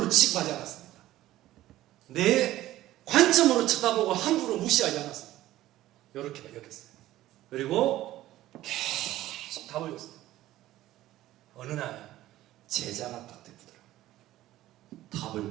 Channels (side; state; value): left; quieter; 15.0 dB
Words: 취급하지 않았습니다. 내 관점으로 쳐다보고 함부로 무시하지 않았습니다. 이렇게 여겼어요. 그리고 계속 답을 줬어요. 어느 날 제자가 딱 되더라고요.